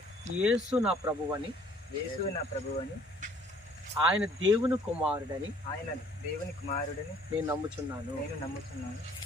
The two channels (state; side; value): normal; both; correlation 0.58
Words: యేసు నా ప్రభువని, యేసు నా ప్రభువని, ఆయన దేవుని కుమారుడని, ఆయన దేవుని కుమారుడని నేను నమ్ముచున్నాను.